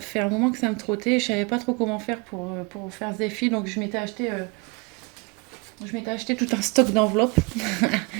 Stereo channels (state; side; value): quieter; left; 28.9 dB